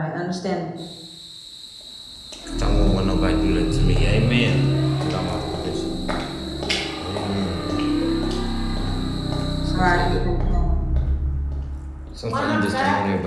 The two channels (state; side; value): identical; both; correlation 1.00